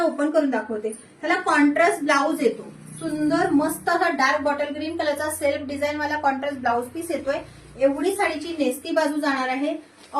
ओपन करून दाखवते. त्याला कॉन्ट्रास्ट ब्लाउज येतो. सुंदर मस्त असा डार्क बॉटल ग्रीन कलरचा सेल्फ डिझाईन वाला कॉन्ट्रास्ट ब्लाउज पीस येतोय. एवढी साडीची नेस्ती बाजू जाणार आहे.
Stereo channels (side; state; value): both; identical; correlation 1.00